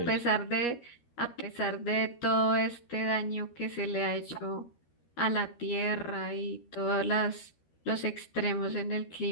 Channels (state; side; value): late; right; 13 ms